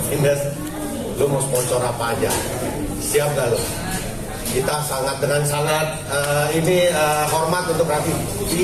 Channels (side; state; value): both; identical; correlation 1.00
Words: Vindes, lu mau sponsor apa aja, siap gak lu? Kita dengan sangat hormat untuk Raffi.